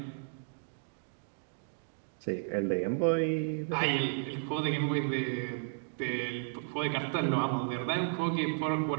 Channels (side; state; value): left; silent; digital silence